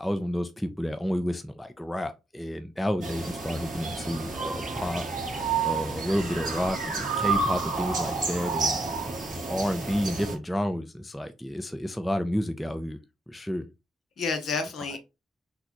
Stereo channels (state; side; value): normal; both; correlation 0.78